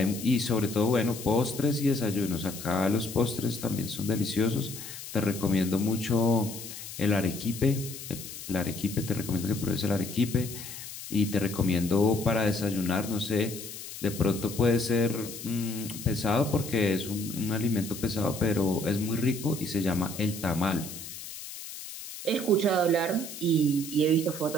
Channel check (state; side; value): noise; left; hiss, 11 dB below the sound